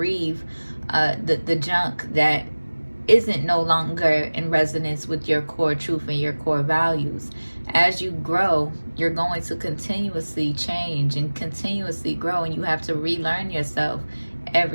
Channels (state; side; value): inverted; both; correlation -1.00